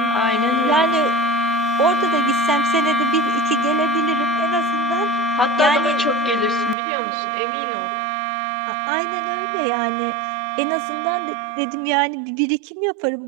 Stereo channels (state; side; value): drops out; left; at 6.8 s